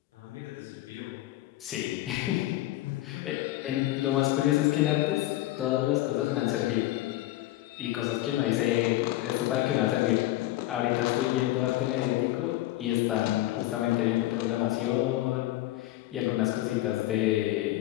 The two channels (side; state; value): right; quieter; 16.2 dB